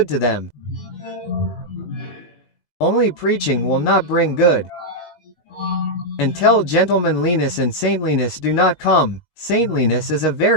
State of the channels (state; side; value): late; right; 19 ms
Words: to them. Only preaching will not bring good. Until gentlemanliness and saintliness do not come, saintliness is a